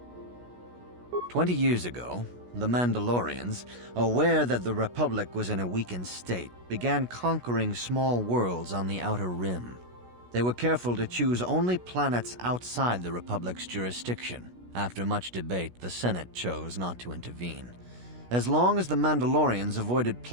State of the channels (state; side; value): late; left; 16 ms